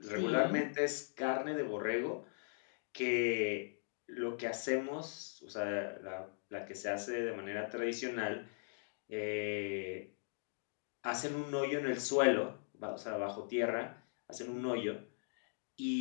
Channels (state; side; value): silent; right; digital silence